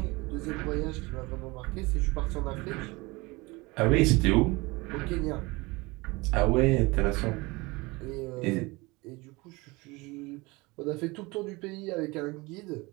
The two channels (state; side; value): quieter; left; 23.8 dB